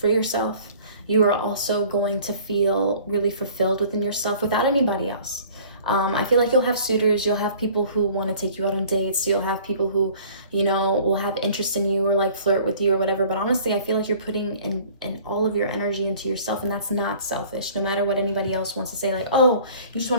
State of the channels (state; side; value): inverted; both; correlation -0.50